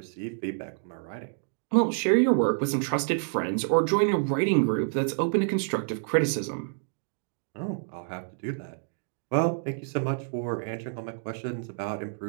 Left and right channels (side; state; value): left; silent; digital silence